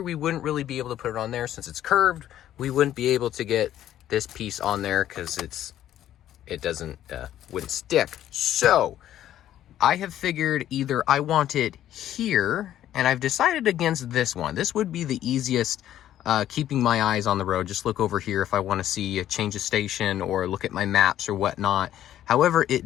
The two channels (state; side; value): quieter; right; 12.0 dB